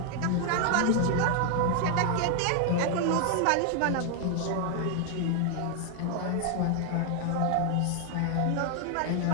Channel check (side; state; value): both; different; correlation 0.00